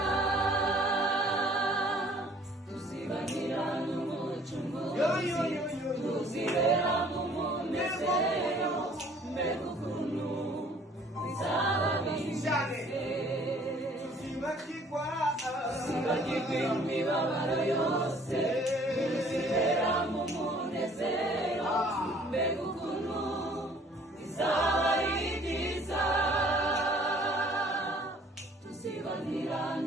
tuzibanira n'umucunguzi, tuzibera mu munezero, mbega ukuntu bizaba bimeze. Tuzibagirwa imibabaro yose, tuzibera mu munezero, mbega ukuntu bizaba ari byiza, tuzibanira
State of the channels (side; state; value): both; normal; correlation 0.56